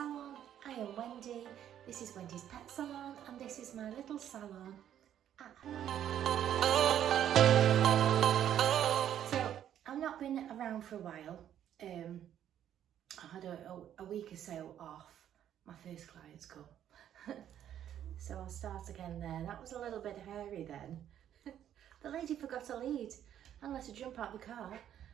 I am Wendy, this is Wendy's Pet Salon and this is my little salon at home. So I've not been around for a while. I had a week or so off. My first clients come. So I'll start again there. That was a little bit hairy then. The lady forgot to lead and let her jump out the car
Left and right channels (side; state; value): left; quieter; 10.5 dB